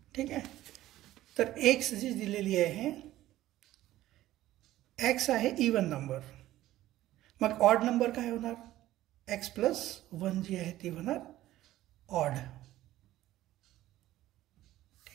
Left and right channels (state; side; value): quieter; left; 14.8 dB